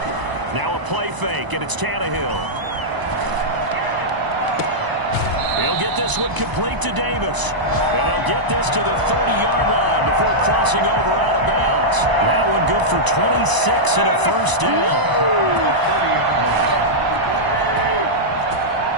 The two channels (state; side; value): late; left; 1.0 ms